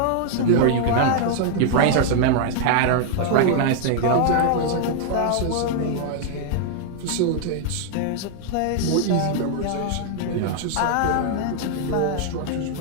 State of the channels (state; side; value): different; both; correlation 0.00